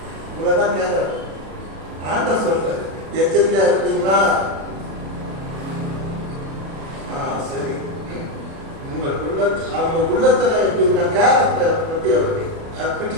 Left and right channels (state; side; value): late; left; 37 ms